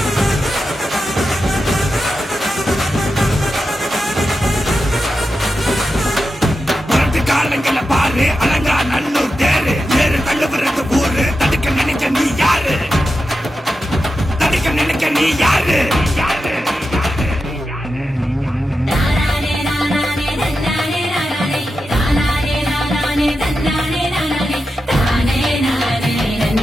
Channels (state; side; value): normal; both; correlation 0.90